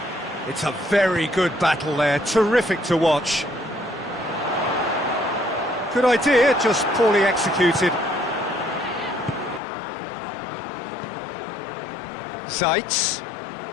It's a very good battle there, terrific to watch. Good idea, just poorly executed. Zeitz.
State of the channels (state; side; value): drops out; right; at 9.6 s